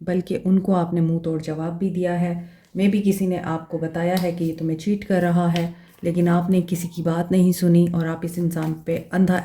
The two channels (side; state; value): both; identical; correlation 1.00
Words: बल्कि उनको आपने मुंह तोड़ जवाब भी दिया है। मे बी किसी ने आपको बताया है कि ये तुम्हें चीट कर रहा है, लेकिन आपने किसी की बात नहीं सुनी और आप इस इंसान पे अंधा